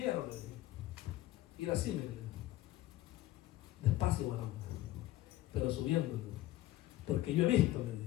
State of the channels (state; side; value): quieter; right; 15.4 dB